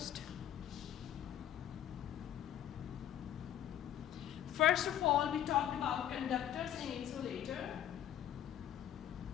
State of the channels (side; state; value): right; quieter; 11.1 dB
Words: First of all, we talked about conductors and insulator.